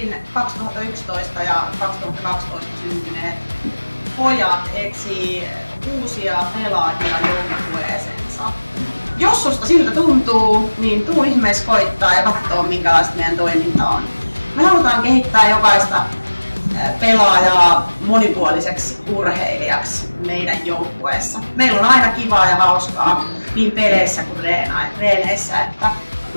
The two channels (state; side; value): inverted; both; correlation -1.00